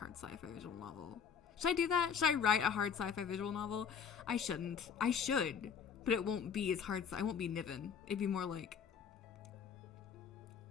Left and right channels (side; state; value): right; quieter; 7.1 dB